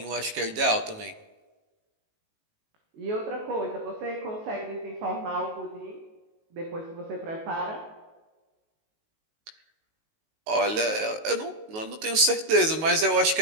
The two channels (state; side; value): late; left; 19 ms